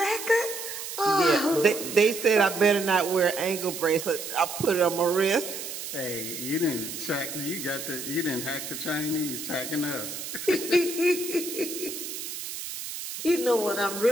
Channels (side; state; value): right; noise; hiss, 8 dB below the sound